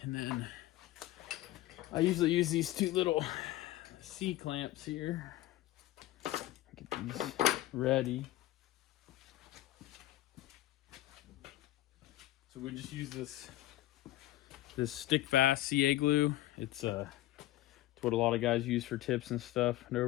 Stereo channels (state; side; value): quieter; right; 15.6 dB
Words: and then I usually use these two little C-clamps here. Get these ready. So we just use this this stick fast CA glue. It's what a lot of guys use for tips and stuff and